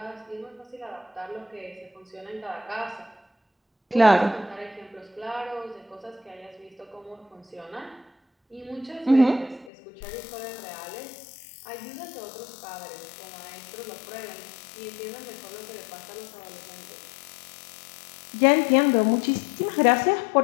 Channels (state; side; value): drops out; right; at 9.7 s